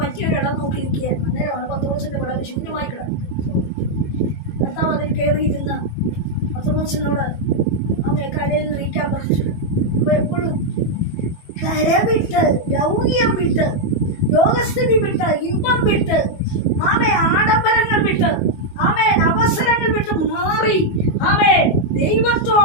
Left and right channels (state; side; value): late; right; 22 ms